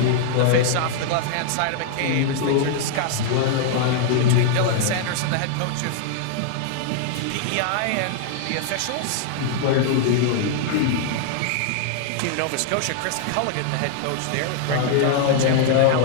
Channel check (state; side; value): different; both; correlation -0.01